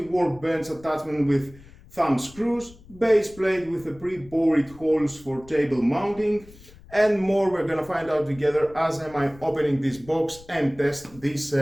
attachment with thumb screws, base plate with the pre-bored holes for table mounting, and more. We're gonna find out together as I'm opening this box and test this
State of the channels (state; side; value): noise; left; rumble, 22 dB below the sound